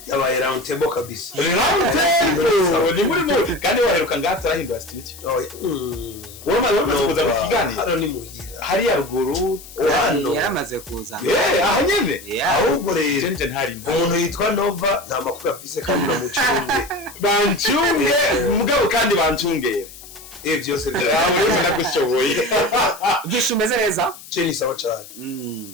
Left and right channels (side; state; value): left; noise; hiss, 17 dB below the sound